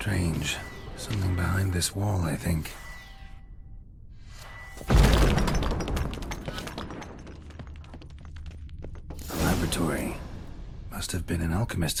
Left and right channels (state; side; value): identical; both; correlation 1.00